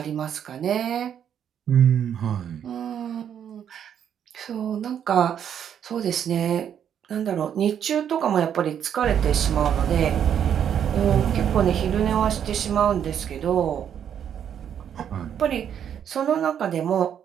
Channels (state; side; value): quieter; left; 8.9 dB